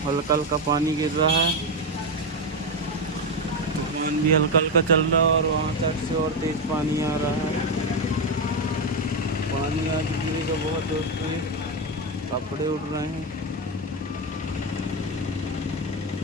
हल्का हल्का पानी गिर रहा है। तूफान भी हल्का हल्का चल रहा है और वहाँ तक से और तेज पानी आ रहा है। पानी आज गिरेगा बहुत दोस्तों, कपड़े उड़ रहे हैं।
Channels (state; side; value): normal; both; correlation 0.10